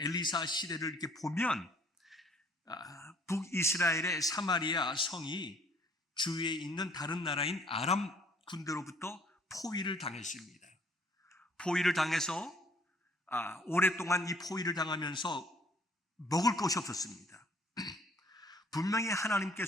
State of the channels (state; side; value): normal; both; correlation 0.59